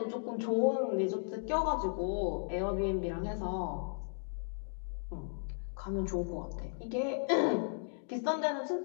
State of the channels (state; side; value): silent; right; digital silence